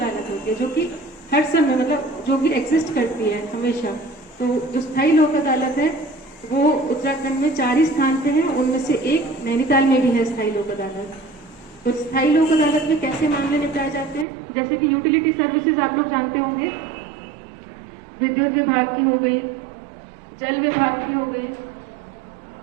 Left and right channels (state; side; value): drops out; left; at 14.2 s